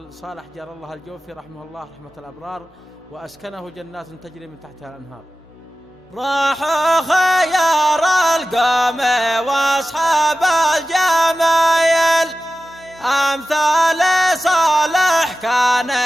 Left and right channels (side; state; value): both; normal; correlation 0.94